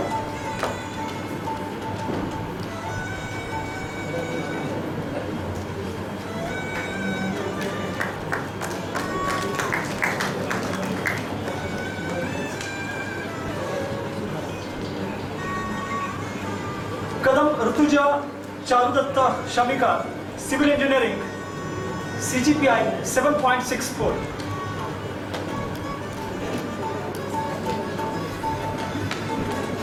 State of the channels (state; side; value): identical; both; correlation 1.00